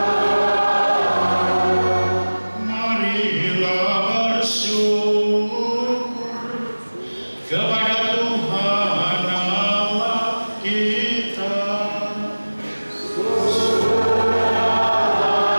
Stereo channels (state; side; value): inverted; both; correlation -1.00